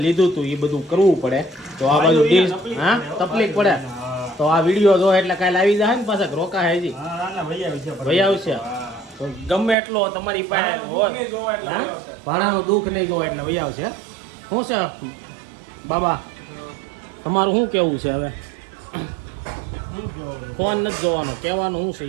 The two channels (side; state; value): left; drops out; at 9.8 s